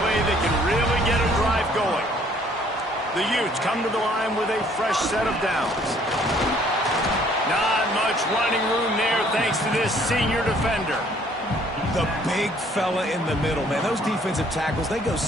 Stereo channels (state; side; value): normal; both; correlation 0.61